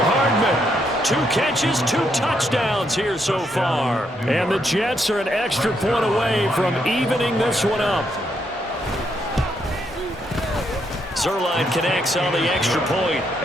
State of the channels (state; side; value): normal; both; correlation 0.77